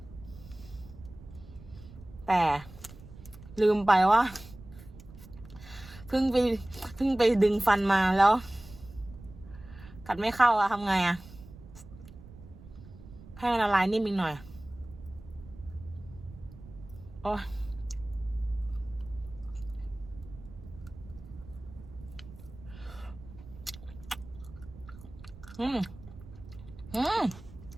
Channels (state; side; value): noise; right; rumble, 17 dB below the sound